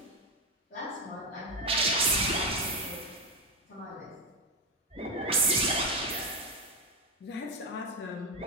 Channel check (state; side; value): normal; both; correlation 0.08